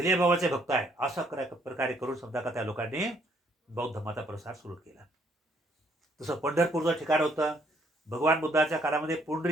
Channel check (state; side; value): normal; both; correlation 0.67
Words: बाबाचे भक्त आहे. अशा प्रकारे करून समजा का त्या लोकांनी बौद्ध धर्माचा प्रसार सुरू केला. तसं पंढरपूरचं ठिकाण होतं. भगवान बुद्धाच्या काळामध्ये